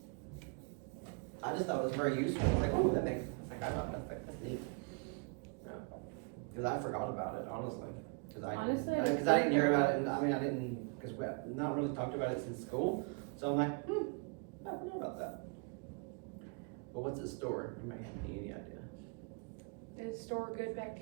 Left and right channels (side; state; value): left; quieter; 35.4 dB